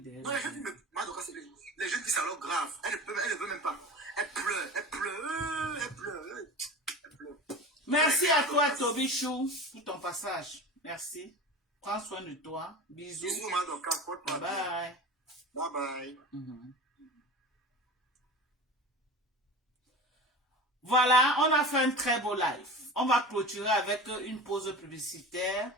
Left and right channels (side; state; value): both; normal; correlation 0.33